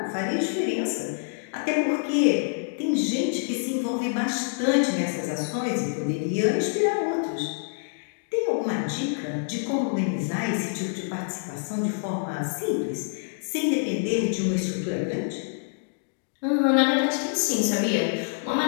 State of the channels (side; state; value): right; silent; digital silence